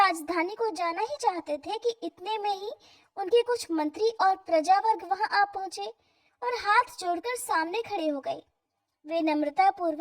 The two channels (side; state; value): both; identical; correlation 1.00